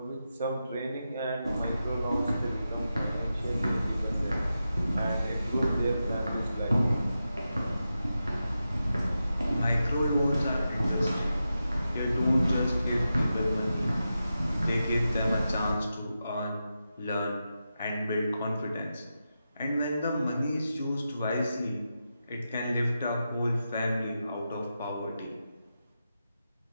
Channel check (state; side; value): inverted; both; correlation -0.90